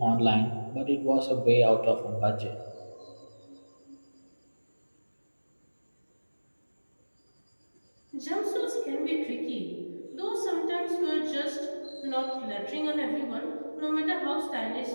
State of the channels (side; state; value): both; inverted; correlation -1.00